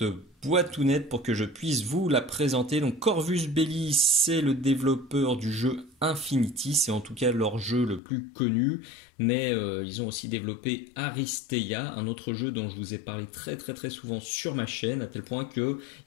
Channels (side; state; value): right; drops out; at 8.0 s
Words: boîtounette pour que je puisse vous la présenter. Donc Corvus Belli, c'est le développeur du jeu Infinity, c'est en tout cas leur jeu le plus connu, mais ils ont aussi développé Aristeia, un autre jeu dont je vous ai parlé très souvent sur ma chaîne, à tel point qu'il